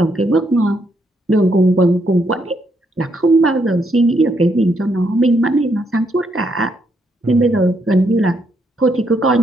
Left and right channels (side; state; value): both; normal; correlation 0.75